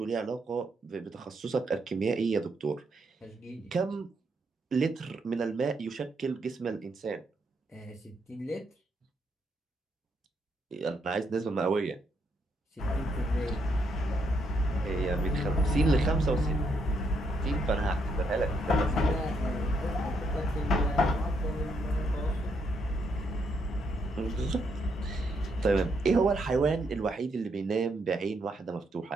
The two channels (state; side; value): normal; both; correlation 0.76